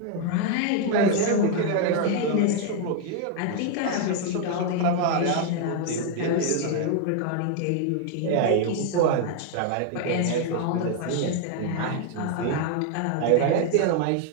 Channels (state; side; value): different; both; correlation 0.00